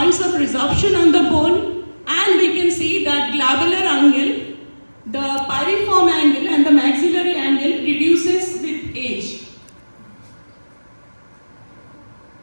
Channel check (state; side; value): inverted; both; correlation -1.00